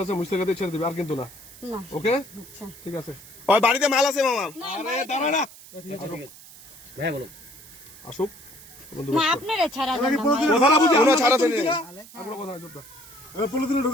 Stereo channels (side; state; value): right; noise; hiss, 19 dB below the sound